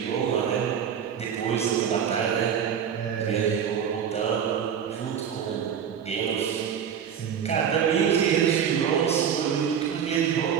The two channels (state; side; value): quieter; left; 8.1 dB